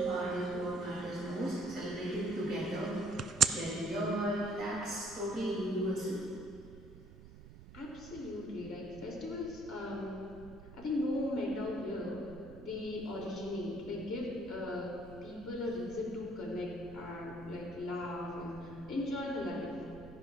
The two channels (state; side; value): noise; right; rumble, 16 dB below the sound